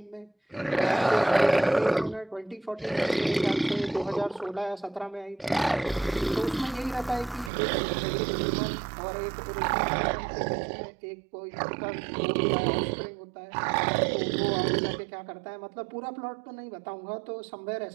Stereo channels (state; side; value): drops out; left; at 7.5 s